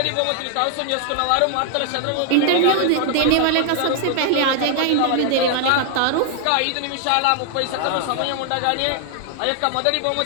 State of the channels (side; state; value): both; different; correlation 0.00